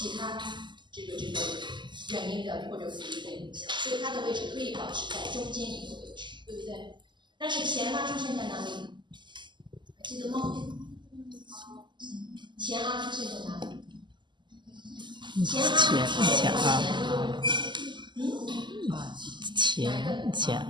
他这个元音的或者辅音的影响，所以它的位置可以保持在中间一个位置，对不对？但是前出现在哪里？还记得吗？前出现在哪里？前出现在前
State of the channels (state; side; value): late; left; 0.22 ms